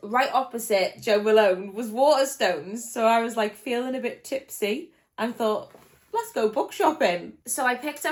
right opposite Joe Malone was Waterstones, so I was like feeling a bit tipsy and thought, let's go book shopping. So I picked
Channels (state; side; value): identical; both; correlation 1.00